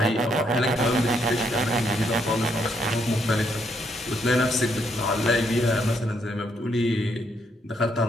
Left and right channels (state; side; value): normal; both; correlation 0.74